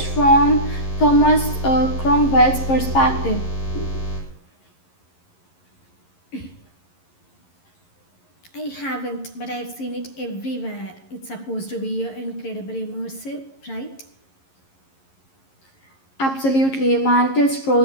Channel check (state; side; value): late; right; 11 ms